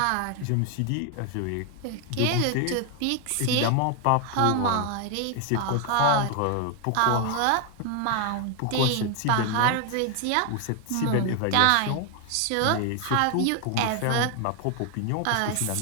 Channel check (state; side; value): different; both; correlation 0.00